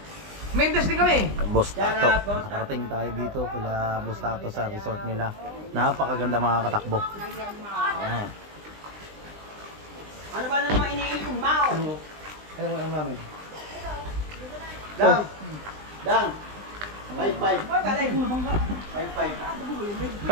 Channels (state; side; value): late; left; 20 ms